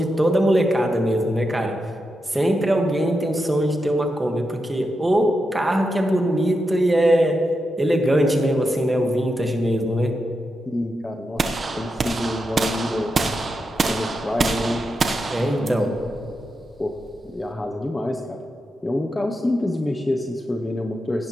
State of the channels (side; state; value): both; normal; correlation 0.87